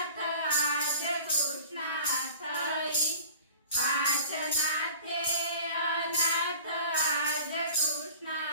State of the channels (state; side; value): inverted; both; correlation -0.43